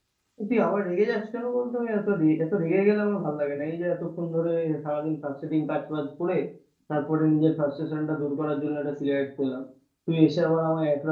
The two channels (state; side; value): identical; both; correlation 1.00